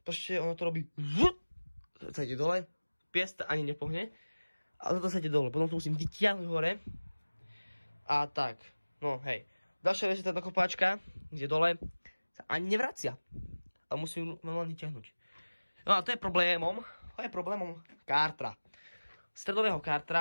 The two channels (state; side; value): inverted; both; correlation -1.00